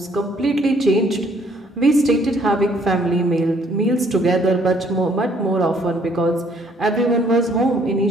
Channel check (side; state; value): both; normal; correlation 0.64